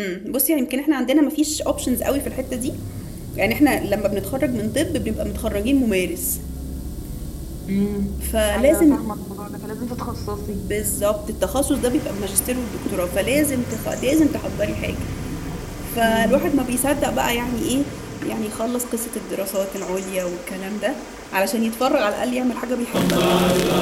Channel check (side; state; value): both; identical; correlation 1.00